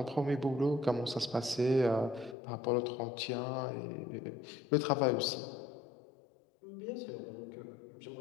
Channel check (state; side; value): drops out; right; at 2.4 s